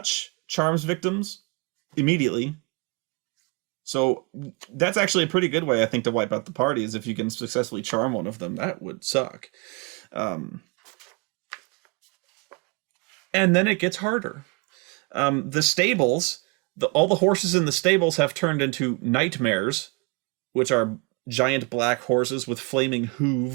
charms victims immediately. So that's actually a pretty good way, I think, to wipe out the party, is if you can successfully charm one of them. That would suck. And then it gets harder. The stables, all the horses in the stables have turned into nightmares, which are giant black horses with flaming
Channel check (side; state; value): left; quieter; 29.6 dB